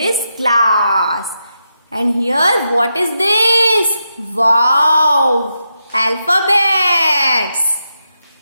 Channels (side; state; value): both; inverted; correlation -0.86